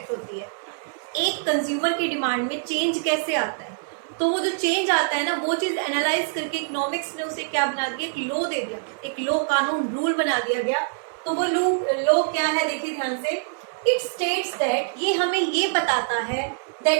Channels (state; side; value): silent; left; 62 dB below the other